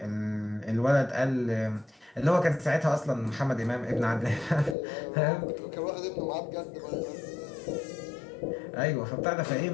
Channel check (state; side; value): drops out; right; at 4.8 s